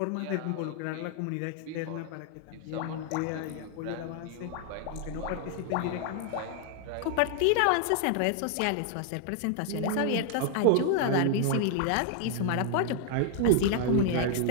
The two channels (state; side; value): different; both; correlation 0.00